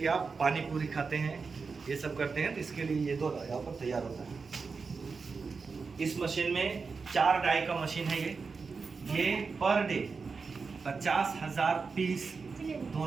आप पानी पूरी खाते हैं, ये सब करते हैं। तो इसके लिए ये दोना यहाँ पर तैयार होता है। इस मशीन में 4 डाई का मशीन है ये पर डे 50,000 पीस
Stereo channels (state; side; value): quieter; left; 4.8 dB